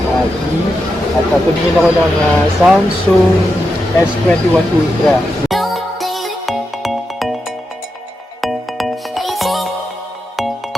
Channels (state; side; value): normal; both; correlation 0.87